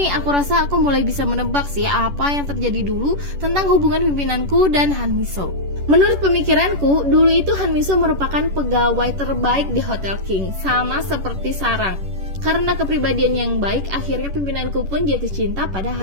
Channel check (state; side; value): late; left; 10 ms